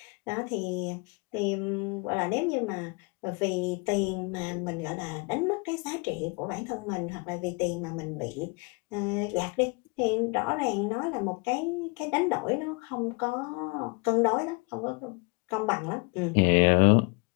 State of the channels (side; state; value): right; quieter; 30.7 dB